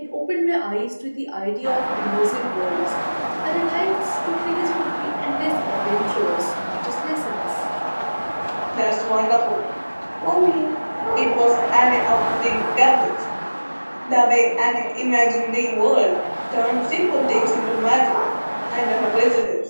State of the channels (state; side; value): inverted; both; correlation -1.00